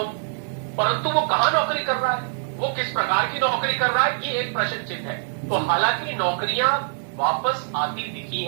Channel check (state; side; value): silent; left; digital silence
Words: परंतु वो कहां नौकरी कर रहा है, वो किस प्रकार की नौकरी कर रहा है, ये एक प्रश्न चिन्ह है। तो हालांकि नौकरियां वापस आती दिखी